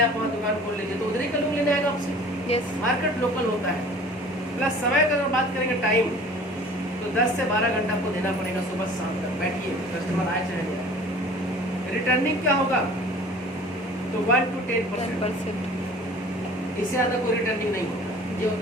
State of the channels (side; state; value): both; normal; correlation 0.46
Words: वहाँ दुकान खोल लीजिए तो उधर ही का लोग लेने आएगा आपसे। यस। मार्केट लोकल होता है। प्लस समय का अगर बात करेंगे टाइम, तो 10 से 12 घंटा आपको देना पड़ेगा सुबह से शाम तक। बैठिए, कस्टमर आए चाहे नहीं आए। रिटर्निंग क्या होगा? तो 1 to 10%। इससे ज़्यादा कोई रिटर्निंग नहीं होगा, ये